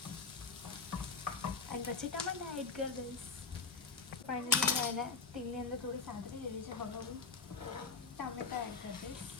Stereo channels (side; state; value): right; quieter; 4.6 dB